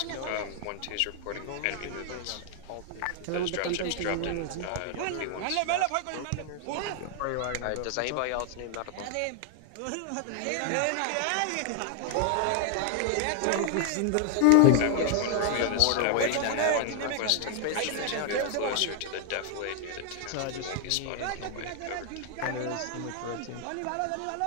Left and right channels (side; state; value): both; different; correlation 0.00